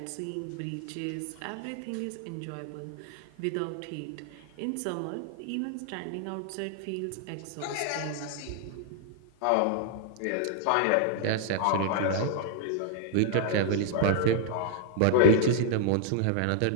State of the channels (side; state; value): both; different; correlation 0.00